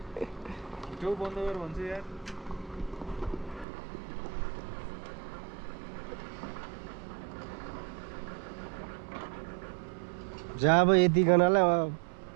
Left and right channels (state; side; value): drops out; left; at 3.7 s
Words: त्यो बन्द गर भन्छ यार जहाँ अब यतिकनालाई